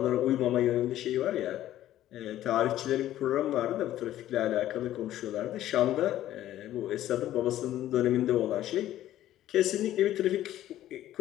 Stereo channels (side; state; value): right; quieter; 13.2 dB